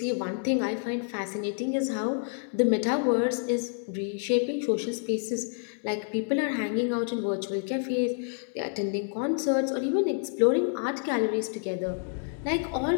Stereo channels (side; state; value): right; silent; 59 dB below the other